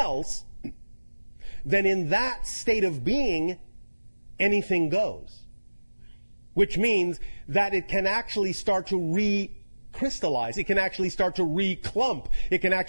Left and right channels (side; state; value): both; inverted; correlation -1.00